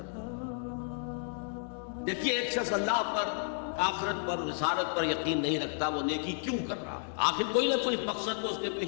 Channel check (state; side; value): silent; right; digital silence